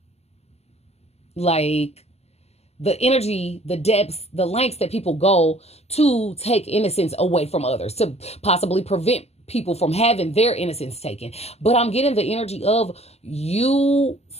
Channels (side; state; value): right; late; 0.30 ms